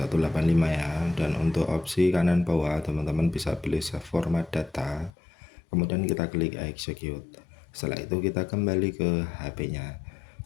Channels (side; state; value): right; drops out; at 5.1 s